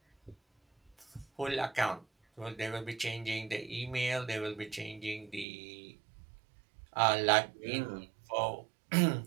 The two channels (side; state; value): left; drops out; at 5.5 s